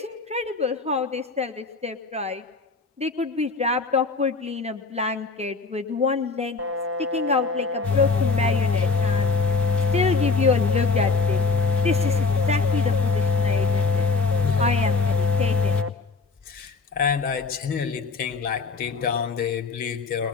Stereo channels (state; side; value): quieter; right; 4.5 dB